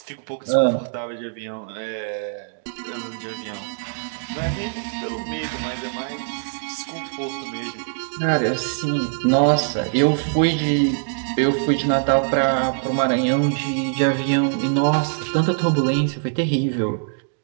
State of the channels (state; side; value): silent; left; digital silence